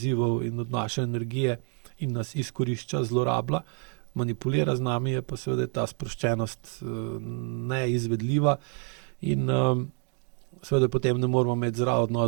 in od naše energije in nas izkorišča, zlorablja, manipulira z nami, je pa seveda ta sproščenost neizvedljiva in seveda potem ne moramo imeti zdrav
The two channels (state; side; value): quieter; left; 38.4 dB